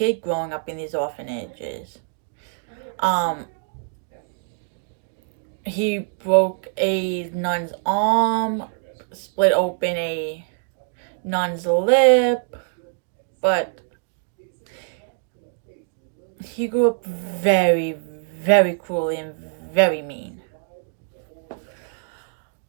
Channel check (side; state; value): left; silent; 63 dB below the other